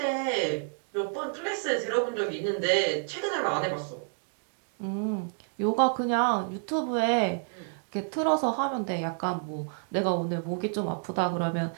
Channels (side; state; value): left; silent; 58 dB below the other